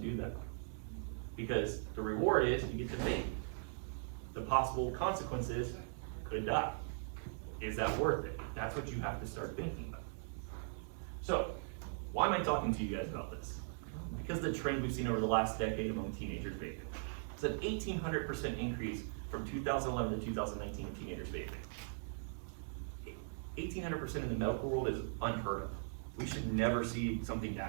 do that? Because the reward is you get to vape. The possible consequence is you could die. Is that worth it? That's what you have to start thinking about. So, why am I talking to you guys about this? Because of the trend we've seen over the last decade among teenagers vaping. It's an 1,800% increase from 2011 to 2019 in teenagers vaping. 1,800% in the medical world is unheard of. We should never see something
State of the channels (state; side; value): silent; left; digital silence